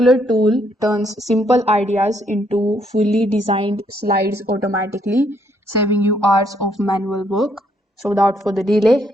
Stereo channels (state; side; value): normal; both; correlation 0.71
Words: tool turns simple ideas into fully designed slides automatically, saving you hours of manual work. So without further delay,